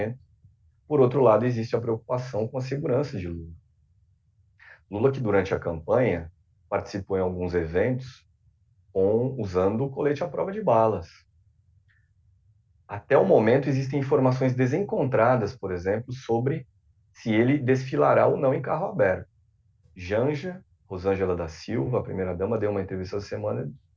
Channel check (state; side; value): identical; both; correlation 1.00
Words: por outro lado, existe a preocupação com a segurança de Lula. Lula, que durante a campanha participou em alguns eventos usando o colete à prova de balas. Até o momento, existem informações desencontradas, por exemplo, sobre se ele desfilará ou não em carro aberto. Janja, Rosângela da Silva, a primeira-dama, deu uma entrevista essa semana,